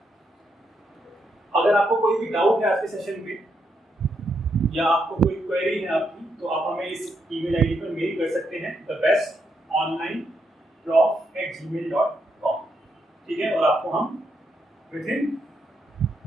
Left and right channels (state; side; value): normal; both; correlation 0.79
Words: अगर आपको कोई भी डाउट है आज के सेशन में या आपको कोई क्वेरी है आपकी, तो आप हमें इस ईमेल आईडी पर मेल कर सकते हैं, thebestonlineprof@gmail.com। ठीक है, और आपको हम विदिन